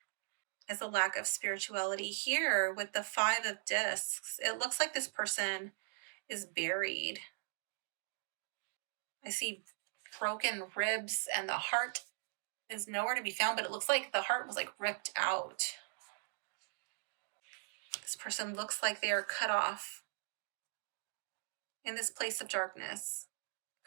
a lack of spirituality. Here with the Five of Discs, it looks like this person is buried. I see broken ribs and the heart is nowhere to be found, but it looks like the heart was like ripped out. This person looks like they are cut off in this place of darkness.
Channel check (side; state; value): left; silent; digital silence